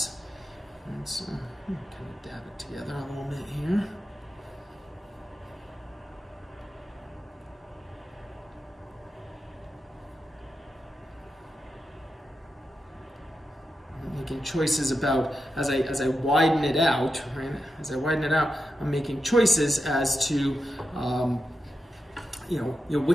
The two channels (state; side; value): normal; both; correlation 0.89